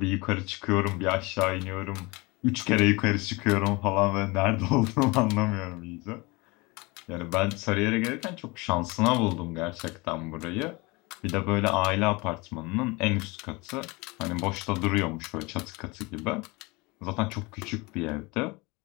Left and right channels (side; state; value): right; quieter; 25.3 dB